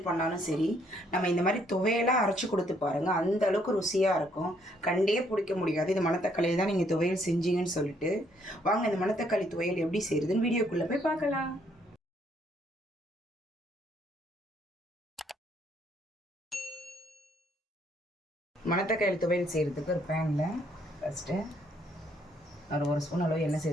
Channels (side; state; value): both; normal; correlation 0.68